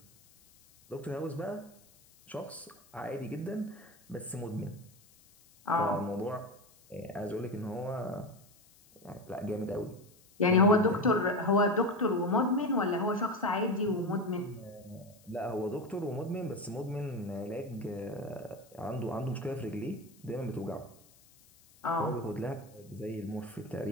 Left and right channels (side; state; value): left; noise; hiss, 27 dB below the sound